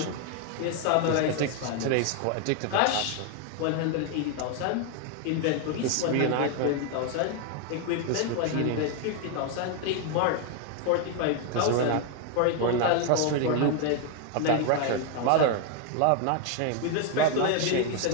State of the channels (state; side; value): different; both; correlation 0.01